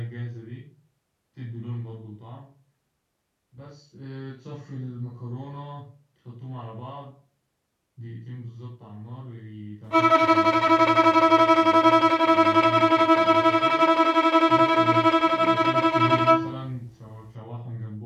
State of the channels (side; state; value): both; identical; correlation 1.00